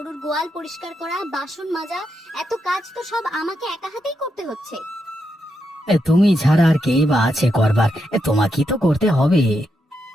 গোয়াল পরিষ্কার করা, বাসন মাজা, এত কাজ তো সব আমাকে একা হাতেই করতে হচ্ছে। তুমি ছাড়া আর কে বা আছে করবার, তোমাকেই তো করতে হবে।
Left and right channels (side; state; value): both; normal; correlation 0.83